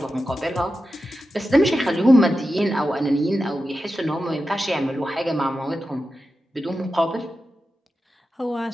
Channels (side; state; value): both; normal; correlation 0.91